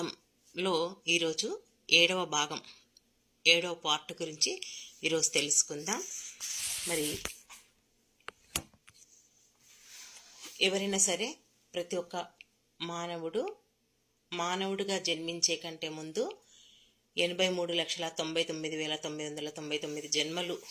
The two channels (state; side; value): identical; both; correlation 1.00